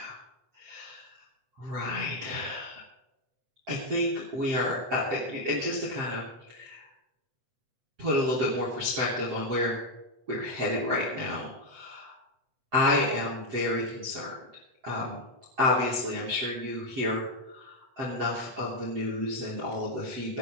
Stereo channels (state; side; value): late; left; 8.0 ms